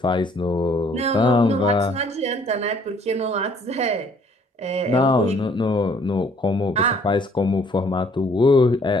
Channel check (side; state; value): both; normal; correlation 0.61